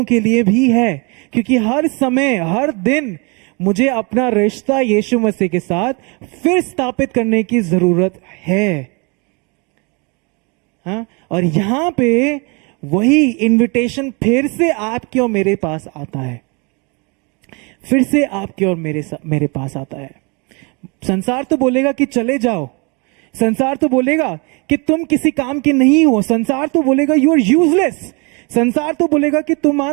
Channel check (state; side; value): quieter; left; 30.9 dB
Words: के लिए भी है, क्योंकि हर समय हर दिन मुझे अपना रिश्ता यीशु मसीह के साथ फिर स्थापित करने की जरूरत है। हाँ, और यहां पे वही इनविटेशन फिर से आपके और मेरे पास आता है, फिर से आपके और मेरे पास आता है। संसार तो बोलेगा कि चले जाओ, संसार तो बोलेगा कि तुम किसी काम के नहीं हो, संसार तो बोलेगा यू आर यूजलेस, संसार तो बोलेगा कि